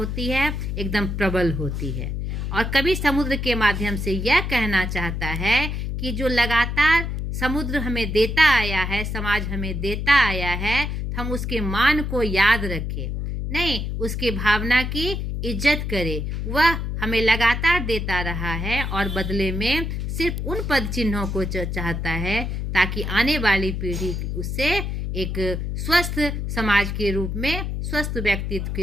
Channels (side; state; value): left; noise; hum, 3 dB below the sound